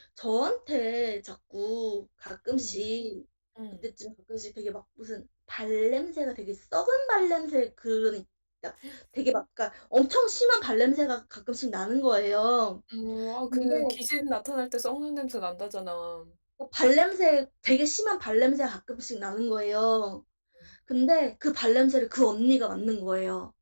저한테 자꾸 음, 가끔씩 음. 그때쯤 가끔씩 되게 막 무슨 발냄새가 되게 썩은 발냄새 그러니까 되게 막 그러니까 엄청 심한 발냄새가 가끔씩 나는 거예요. 근데 그 귀신 나타날 때 썩는 냄새 난다잖아. 발냄새 되게 심한 발냄새가 가끔씩 나는 거예요. 근데 그 발냄새를 그 언니가 맡는 거예요.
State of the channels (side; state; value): both; inverted; correlation -1.00